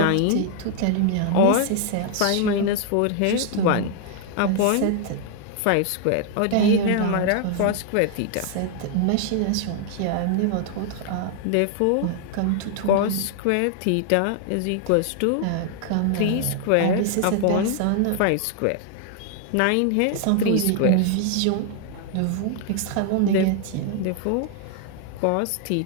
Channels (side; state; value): both; different; correlation 0.00